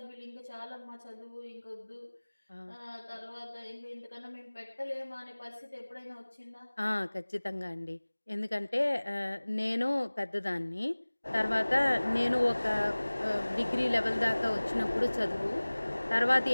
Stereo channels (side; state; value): both; inverted; correlation -1.00